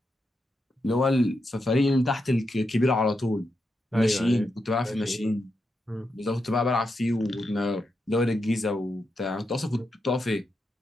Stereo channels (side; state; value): both; normal; correlation 0.85